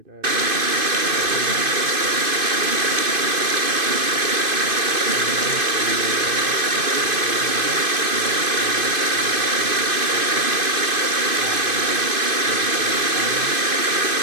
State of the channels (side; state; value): left; late; 2.5 ms